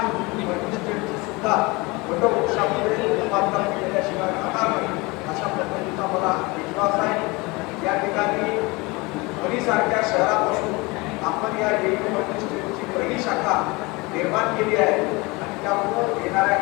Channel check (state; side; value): quieter; right; 24.8 dB